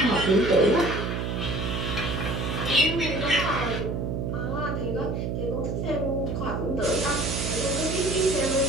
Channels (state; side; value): noise; right; hum, 2 dB below the sound